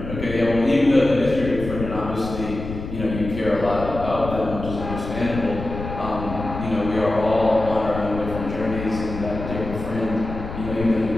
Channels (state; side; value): noise; left; rumble, 8 dB below the sound